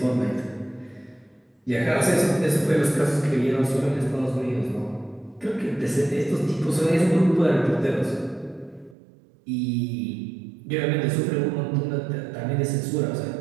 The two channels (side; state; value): left; drops out; at 9.0 s